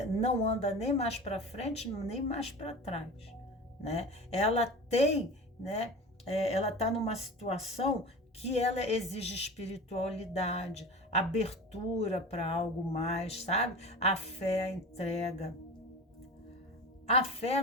não anda nem mais para frente, nem mais para trás, né? Ela tem, né? Ela está numa situação que ela exige espiritualidade, abertura para algo mais, sabe? A fé, a entrega. A fé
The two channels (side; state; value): both; normal; correlation 0.33